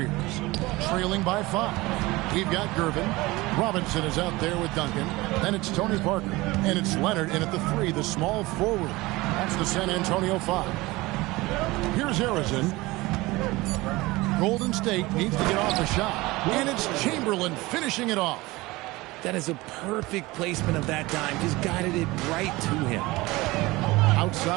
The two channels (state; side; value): quieter; left; 20.9 dB